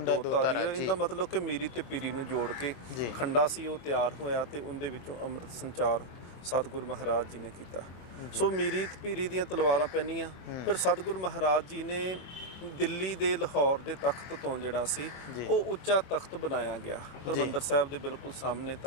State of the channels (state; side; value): late; right; 23 ms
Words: ਧਾਰੀ ਹੈ। ਇਹਦਾ ਮਤਲਬ ਕਿ ਮੀਰੀ ਤੇ ਪੀਰੀ ਨੂੰ ਜੋੜ ਕੇ ਖੰਡਾ ਸੀ ਉਹ ਤਿਆਰ ਹੋਇਆ ਤੇ ਉਹਦੇ ਵਿੱਚੋਂ ਅੰਮ੍ਰਿਤ ਸੰਚਾਰ ਸਤਿਗੁਰੂ ਮਹਾਰਾਜ ਜੀ ਨੇ ਕੀਤਾ। ਸੋ ਮੀਰੀ ਤੇ ਪੀਰੀ ਦੀਆਂ ਤਲਵਾਰਾਂ ਪਹਿਨੀਆਂ। ਫਿਰ ਸਤਿਗੁਰੂ ਮਹਾਰਾਜ ਜੀ ਨੇ ਦਿੱਲੀ ਦੇ ਲਾਹੌਰ ਦੇ ਤਖਤ ਤੋਂ ਜਿਹੜਾ ਸੀ ਉਹ ਉੱਚਾ ਤਖਤ ਬਣਾਇਆ ਗਿਆ, ਹਰਿਮੰਦਰ ਸਾਹਿਬ ਦੇ ਬਿਲਕੁਲ ਸਾਹਮਣੇ